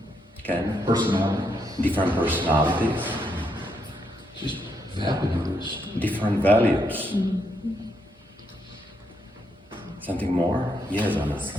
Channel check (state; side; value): normal; both; correlation 0.78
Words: Okay. Personality? Different personalities. Just values. Different values. Something more? Yes, Anna.